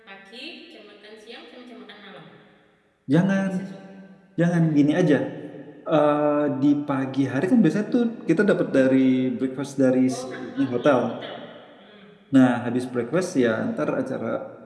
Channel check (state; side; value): identical; both; correlation 1.00